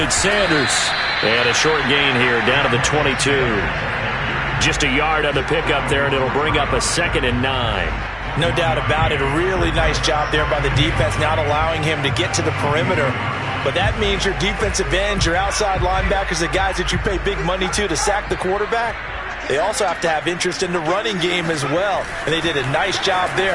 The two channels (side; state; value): both; identical; correlation 1.00